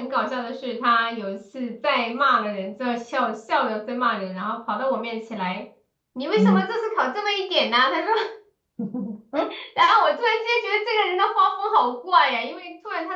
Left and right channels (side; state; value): both; identical; correlation 1.00